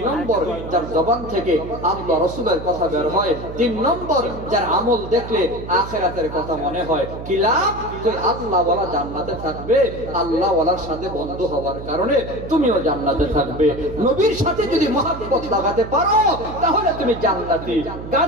নম্বর, যার জবান থেকে আল্লাহ রাসূলের কথা বের হয়। তিন নম্বর, যার আমল দেখলে আখিরাতের কথা মনে হয়। কি লাভ? তুই আল্লাহ ওয়ালা জান্নাতে থাকবে। আল্লাহ ওয়ালার সাথে বন্ধু হওয়ার কারণে তুমিও জান্নাতে থাকবে। নবীর সাথে যদি মহব্বত লাগাতে পারো তাহলে তুমি জান্নাতি।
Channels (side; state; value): right; noise; hum, 11 dB below the sound